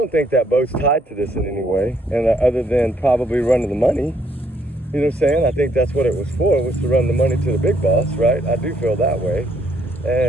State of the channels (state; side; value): normal; both; correlation 0.70